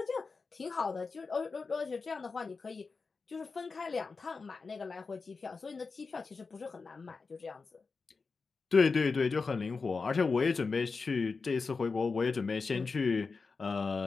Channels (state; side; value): quieter; right; 4.5 dB